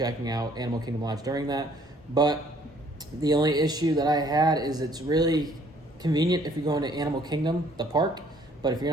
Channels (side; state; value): both; normal; correlation 0.61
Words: out Animal Kingdom Lodge during that. But the only issue that I had is it's really convenient if you're going to Animal Kingdom, the park. But if you're